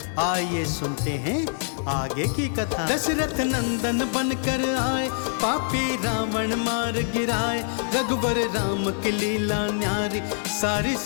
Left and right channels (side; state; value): right; silent; 62 dB below the other